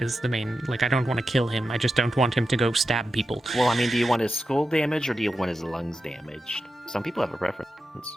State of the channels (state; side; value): normal; both; correlation 0.90